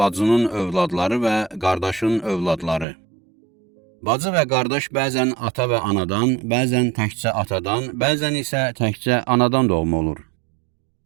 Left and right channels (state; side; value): drops out; left; at 2.9 s